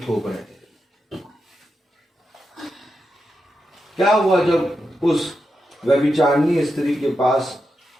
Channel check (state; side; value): normal; both; correlation 0.87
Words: थोप रहे थे। क्या हुआ जब उस व्यभिचारिणी स्त्री के पास